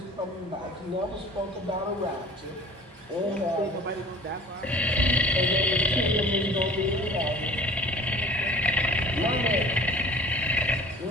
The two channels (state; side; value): normal; both; correlation 0.46